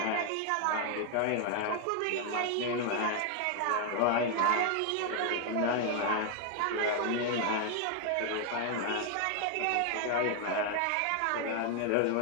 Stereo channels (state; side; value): different; both; correlation 0.00